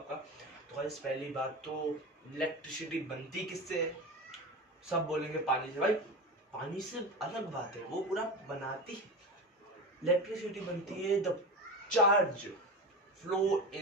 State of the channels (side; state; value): both; normal; correlation 0.26